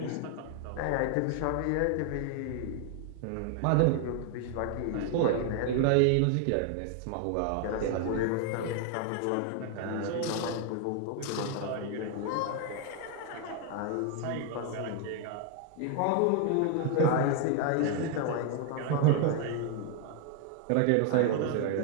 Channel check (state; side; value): different; both; correlation 0.00